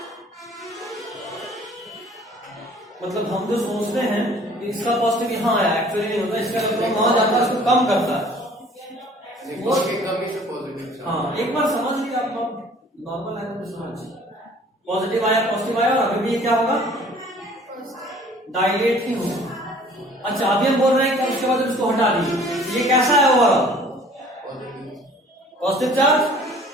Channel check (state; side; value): normal; both; correlation 0.52